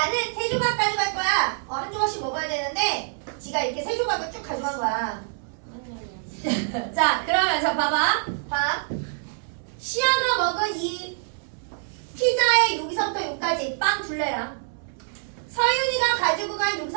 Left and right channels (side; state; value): left; silent; 61 dB below the other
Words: 3조각 가져갈 거야. 한 조각씩 먹어야 되는데 지가 이렇게 3조각을 쭉 가져간 거야. 자, 그러면서 봐봐. 봐. 6까지 빵 둘레랑 서윤이가 가지고 간